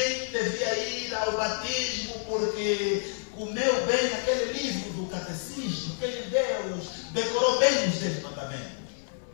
devia ir ao batismo porque comeu bem aquele livro do catecismo, aquele Deus, decorou bem os 10 mandamentos.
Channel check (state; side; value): silent; right; 57 dB below the other